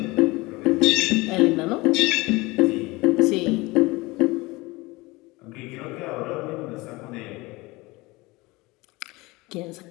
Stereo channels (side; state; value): right; quieter; 22.4 dB